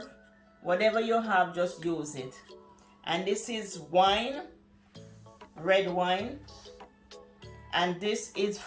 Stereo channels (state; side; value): identical; both; correlation 1.00